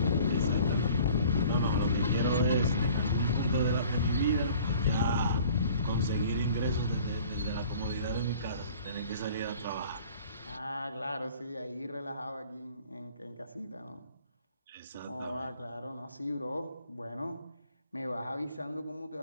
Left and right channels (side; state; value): both; inverted; correlation -0.51